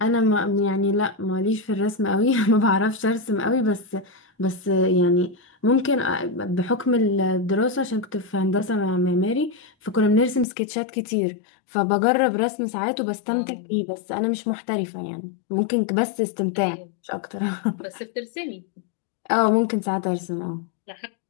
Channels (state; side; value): drops out; right; at 10.5 s